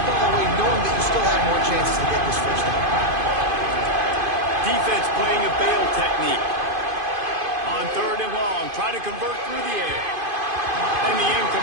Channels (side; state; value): left; late; 2.5 ms